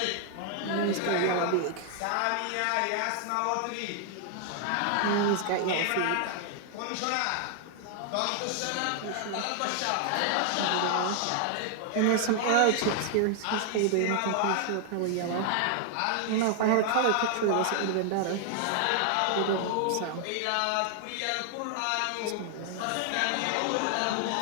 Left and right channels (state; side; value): different; both; correlation 0.00